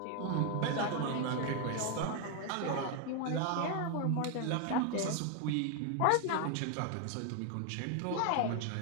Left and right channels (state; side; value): different; both; correlation 0.01